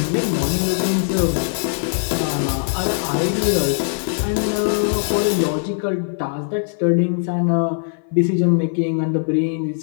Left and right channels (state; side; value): silent; right; 59 dB below the other